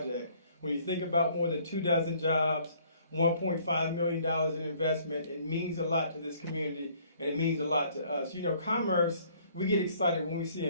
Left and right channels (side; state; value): both; inverted; correlation -0.60